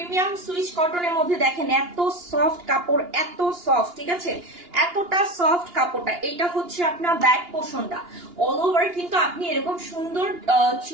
সুইচ কটনের মধ্যে, দেখেন এত সফট কাপড়, এত সফট, ঠিক আছে, এতটা সফট কাপড়টা। এটা হচ্ছে আপনার ব্যাক পোর্শনটা, অল ওভার কিন্তু আপনি এরকম সুন্দর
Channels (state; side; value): late; left; 2.9 ms